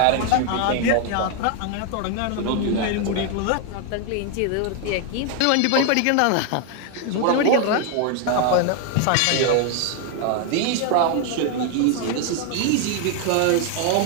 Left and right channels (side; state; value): both; different; correlation 0.00